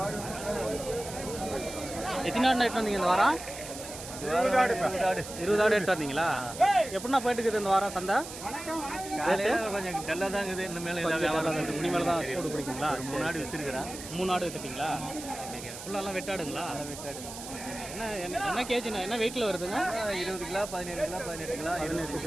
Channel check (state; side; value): noise; right; hiss, 11 dB below the sound